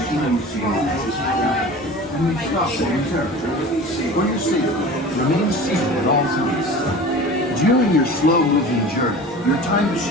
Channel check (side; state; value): both; normal; correlation 0.38